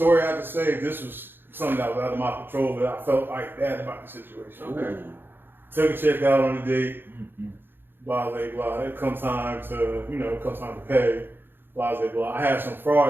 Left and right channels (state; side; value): late; left; 0.10 ms